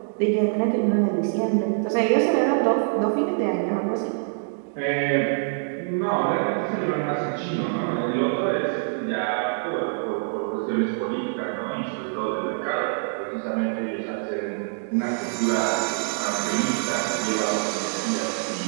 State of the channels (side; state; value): left; silent; digital silence